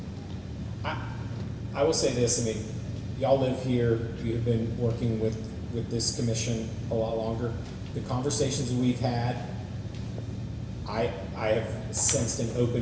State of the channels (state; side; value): identical; both; correlation 1.00